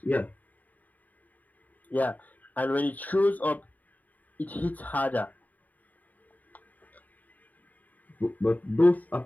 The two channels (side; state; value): right; late; 0.079 ms